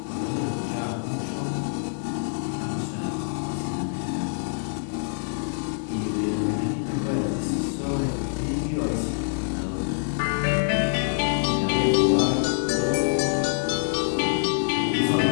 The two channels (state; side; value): silent; right; digital silence